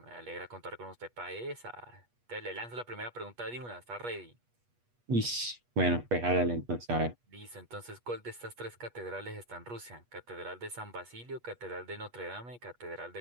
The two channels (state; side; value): late; left; 8.3 ms